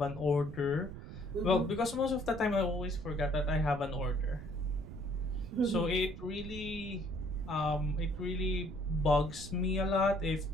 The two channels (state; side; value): noise; right; rumble, 11 dB below the sound